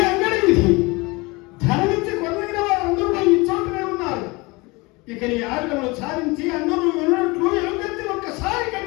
అంగడి విధి. ధనమిచ్చి కొనగిన వారందరూ ఈ చోటనే ఉన్నారు. ఇక నీ ఆటలను సాధించి అందరూ విన్నట్లు ఎలుగెత్తి ఒక్కసారి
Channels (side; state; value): right; quieter; 24.8 dB